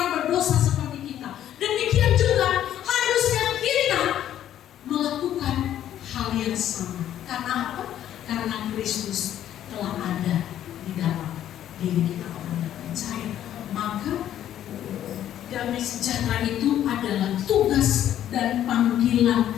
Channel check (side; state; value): right; quieter; 11.3 dB